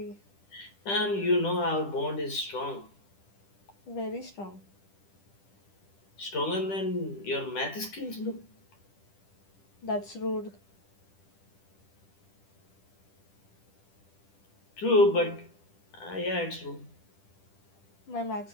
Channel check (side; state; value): right; late; 10 ms